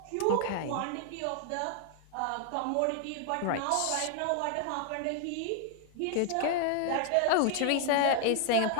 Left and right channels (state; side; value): different; both; correlation 0.00